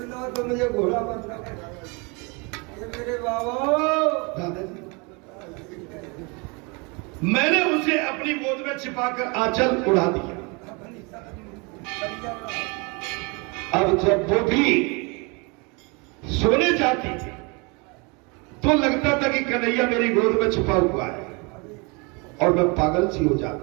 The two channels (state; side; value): quieter; left; 30.1 dB